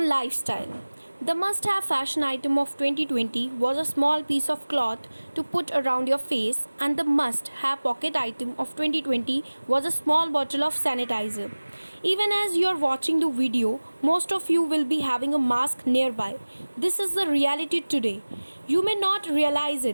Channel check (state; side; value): inverted; both; correlation -1.00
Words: lifestyle. The must-have fashion item of 2020 was a small piece of cloth to put around your face, and the must-have pocket item of 2020 was a small bottle of sanitizer. Even as you are watching the video, most of you will be having a mask nearby. This is the reality today. You may not realize